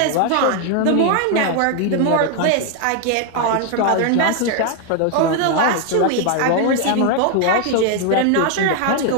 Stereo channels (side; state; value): both; different; correlation 0.00